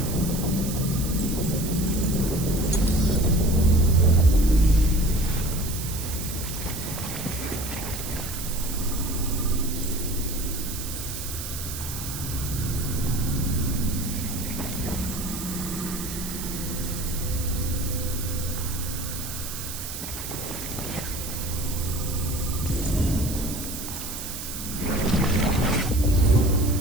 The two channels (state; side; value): noise; right; hiss, 8 dB below the sound